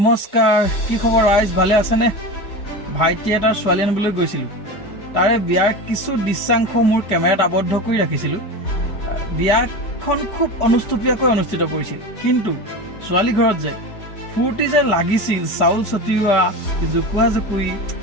কি খবৰ ৰাইজ? ভালে আছেনে? ভাইটি এটাৰ ছোৱালী আনিবলৈ গৈছিলোঁ। তাৰে বিয়াৰ কিছু দৃশ্যাংশ মোৰ কেমেৰাত আবদ্ধ কৰি ৰাখিছিলোঁ। বিয়াখন খুব অনুষ্টুপীয়াকৈ অনুষ্ঠিত কৰিছিল, কিন্তু ছোৱালী ঘৰত যে ফূৰ্তি যে লাগিছিল, চাউল ছটিওৱা, জোকোৱা জোকুৰি,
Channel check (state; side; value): late; right; 4.6 ms